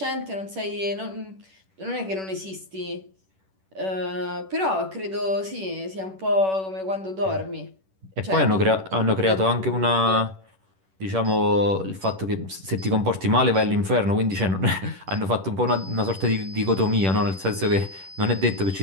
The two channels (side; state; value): left; late; 10 ms